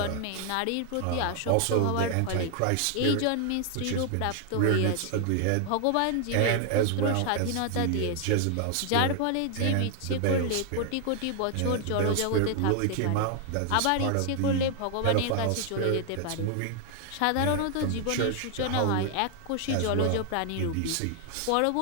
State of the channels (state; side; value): different; both; correlation 0.00